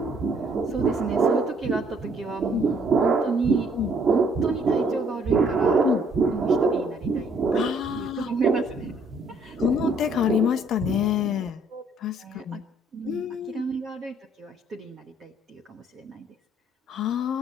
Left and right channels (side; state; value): both; normal; correlation 0.64